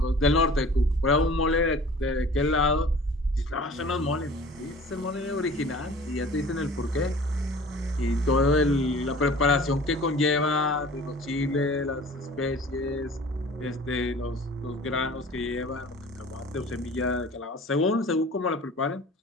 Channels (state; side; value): normal; both; correlation 0.45